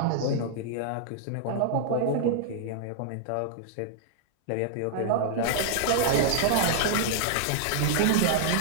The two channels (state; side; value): different; both; correlation -0.01